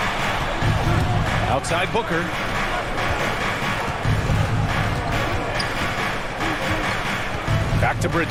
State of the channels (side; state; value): both; identical; correlation 1.00